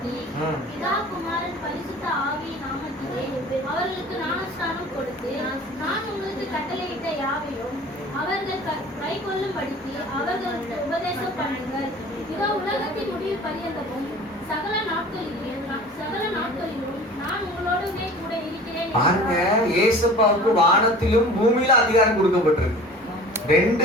அவர்களுக்கு ஞானஸ்நானம் கொடுத்து நான் உங்களுக்கு கட்டளையிட்ட யாவையும் அவர்கள் கைக்கொள்ளும்படிக்கு அவர்களுக்கு உபதேசம் பண்ணுங்கள். இதோ உலகத்தின் முடிவு பரியந்தமும் சகல நாட்களிலும் நான் உங்களோடவே கூட இருக்கிறேன். பாருங்க, இயேசுவுக்கு வானத்திலும் பூமியில அதிகாரம் கொடுக்கப்பட்டிருக்கு. 2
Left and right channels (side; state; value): both; normal; correlation 0.41